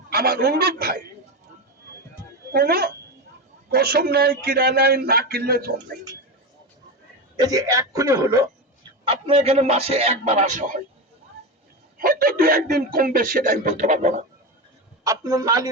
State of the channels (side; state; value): both; normal; correlation 0.18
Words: আমার অনুরোধ ভাই, কোন কসম নাই, কিরা নাই, না কিনলে জম নেই। এই যে এক্ষুনি হলো, আপনার এখানে মাসে একবার আসা হয়, হয়তো 2-1 দিন কমবে, সেটা আমি বলতে পারবো না। আপনার না